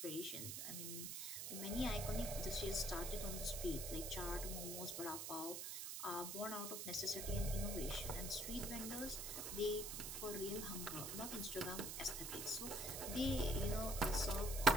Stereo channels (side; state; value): right; noise; hiss, 4 dB below the sound